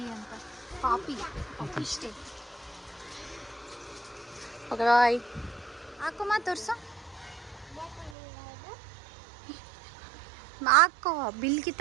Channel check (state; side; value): drops out; left; at 8.2 s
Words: ಅಂತ. ಪಾಪಿ ಇಷ್ಟೇ. Okay bye. ಹಾಕುಮ್ಮ, ತೋರ್ಸು. ಹಾಕೋ, ಬಿಲ್